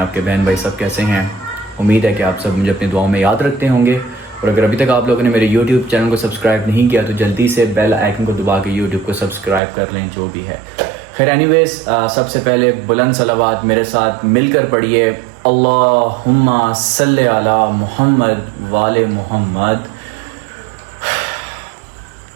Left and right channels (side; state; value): left; drops out; at 9.6 s